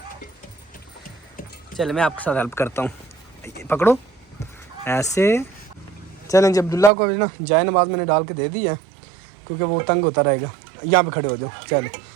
चले मैं आपके साथ हेल्प करता हूँ, पकड़ो ऐसे। चलें जी, अब्दुल्ला को ना जाए नमाज मैंने डाल के दे दी है, क्योंकि वो तंग होता रहेगा। यहाँ पे खड़े हो जाओ। चलो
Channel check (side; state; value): left; drops out; at 6.9 s